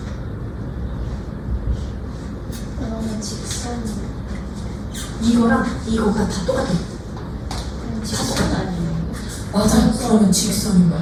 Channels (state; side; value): identical; both; correlation 1.00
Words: 그러면 직선. 이거랑 이거가 다 똑같아. 직선 아니에요. 맞아. 그러면 직선인 거야.